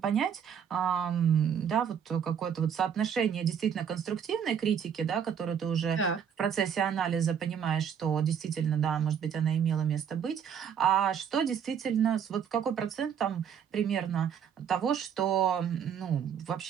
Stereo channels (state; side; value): quieter; left; 8.0 dB